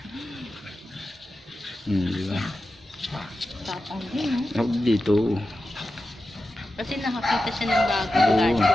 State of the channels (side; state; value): both; normal; correlation 0.92